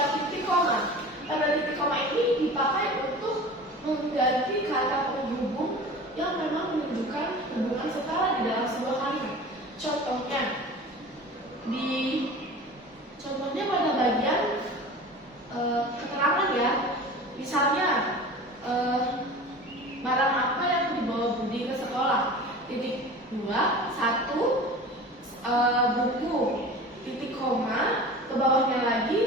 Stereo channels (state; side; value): normal; both; correlation 0.37